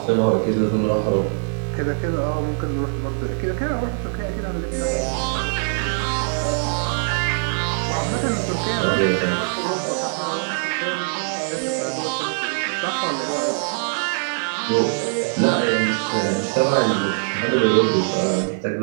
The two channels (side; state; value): left; silent; digital silence